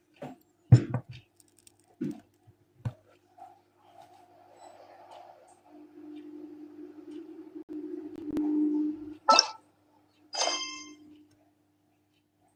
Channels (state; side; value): identical; both; correlation 1.00